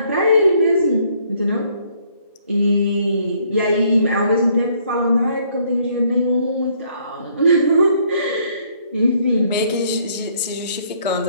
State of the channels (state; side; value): inverted; both; correlation -0.65